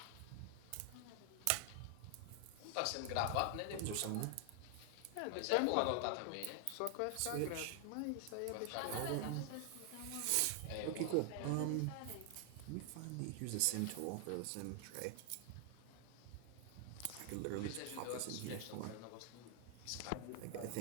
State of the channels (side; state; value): both; different; correlation 0.00